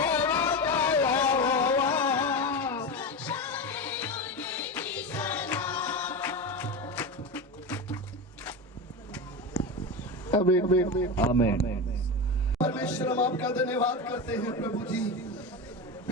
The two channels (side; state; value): both; normal; correlation 0.20